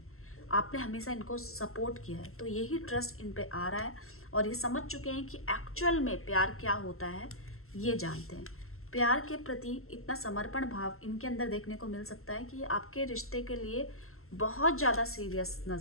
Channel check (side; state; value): right; late; 0.62 ms